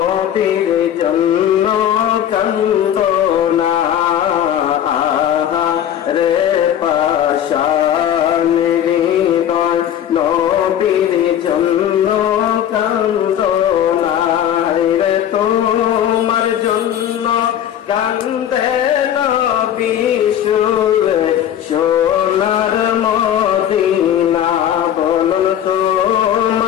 জন্য কান্দনা, আহারে পাশান হৃদয় নবীর জন্য কান্দনা, রে তোমার জন্য কান্দে নবী শুয়ে সোনার মদিনা, বলুন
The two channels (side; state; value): right; quieter; 10.4 dB